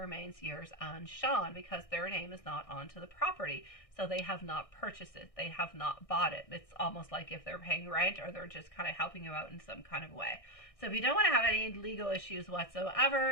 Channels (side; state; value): right; late; 1.6 ms